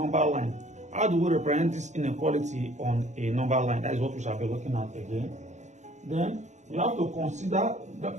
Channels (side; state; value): left; late; 0.34 ms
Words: line. How do we represent this inequality on a number line? That is what we shall be looking at again. Then we have to consider